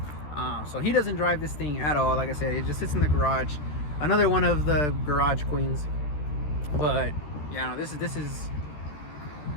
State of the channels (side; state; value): right; late; 13 ms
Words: So he doesn't drive this thing at all. Like I said, it just sits in the garage. Another one of the garage queens. But yeah, no, this is